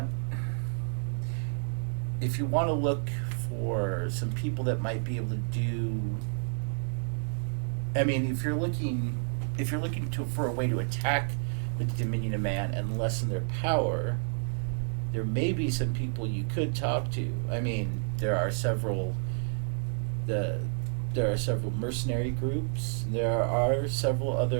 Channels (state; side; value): silent; left; digital silence